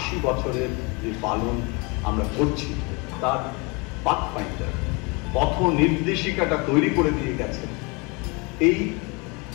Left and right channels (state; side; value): quieter; right; 29.4 dB